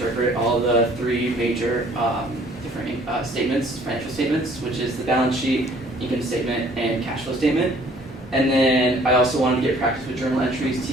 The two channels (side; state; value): both; normal; correlation 0.57